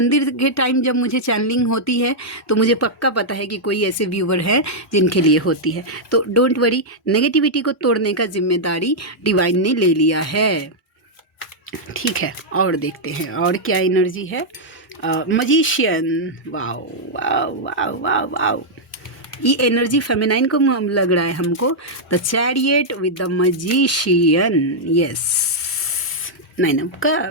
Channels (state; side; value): normal; both; correlation -0.05